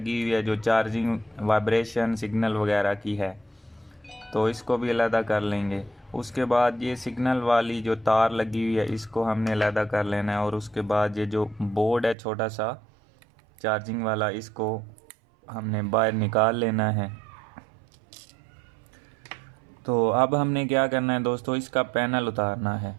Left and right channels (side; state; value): left; drops out; at 12.2 s